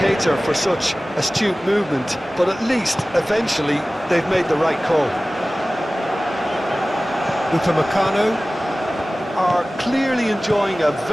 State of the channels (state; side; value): normal; both; correlation 0.97